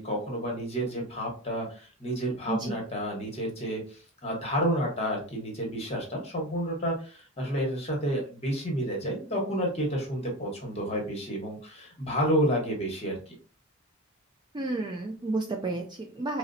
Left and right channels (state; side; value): normal; both; correlation 0.25